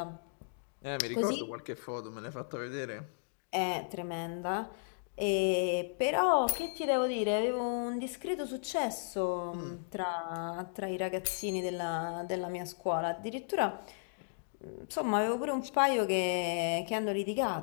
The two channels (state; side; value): silent; right; digital silence